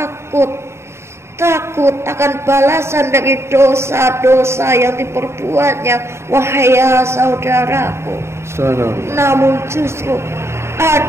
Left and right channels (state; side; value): late; left; 0.13 ms